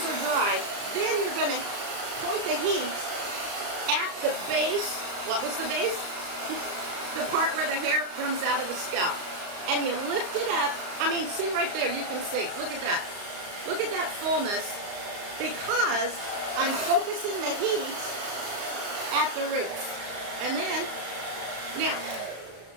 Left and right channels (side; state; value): left; late; 35 ms